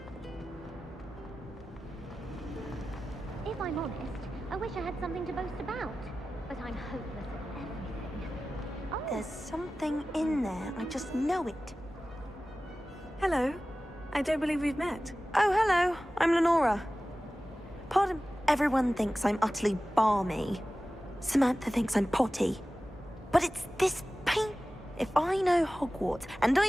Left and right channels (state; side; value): normal; both; correlation 0.96